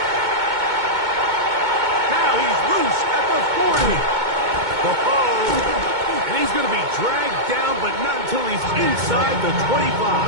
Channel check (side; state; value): left; late; 2.2 ms